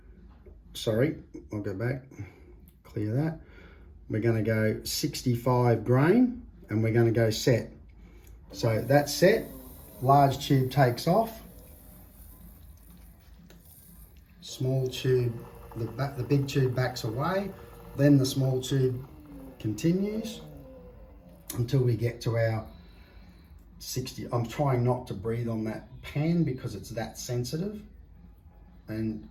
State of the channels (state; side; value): identical; both; correlation 1.00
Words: Sorry, I'll go back, clear that. We're going to go 65 grain and we're going to go set. So that's set. Large tube takes off. Small tube, the big tube backs away. Then the small tube continues until we get to our 60. I'm trying not to breathe on that pan because it's that sensitive. And